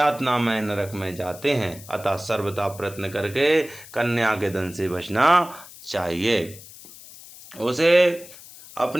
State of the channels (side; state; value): left; noise; hiss, 18 dB below the sound